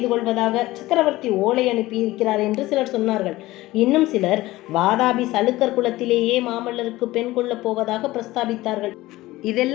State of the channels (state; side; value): quieter; right; 17.9 dB